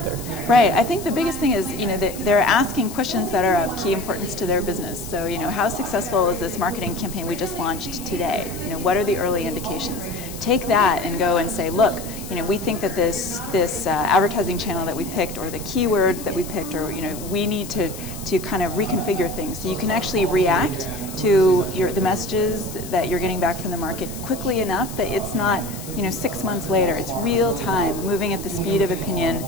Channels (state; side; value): noise; left; hiss, 13 dB below the sound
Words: Right. I think the biggest thing is that they're asking questions that are of key importance to their business. So how successful is this marketing campaign we just launched today? What are the early indications? Take that and go and say, look, we think that this advertising channel that we picked, or the keywords that we picked, or we need to kind of reconfigure things so you can actually react to the messages that you're getting back from the market quickly enough that it's not 6 months later. It's real time, moving at the speed of opinion,